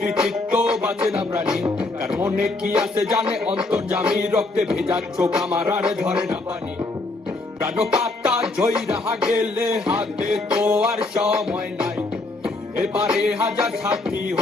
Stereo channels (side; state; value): right; quieter; 3.1 dB